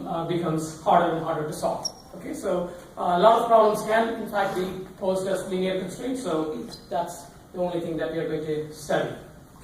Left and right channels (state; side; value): identical; both; correlation 1.00